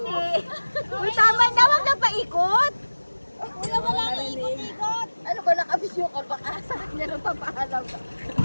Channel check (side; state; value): both; inverted; correlation -1.00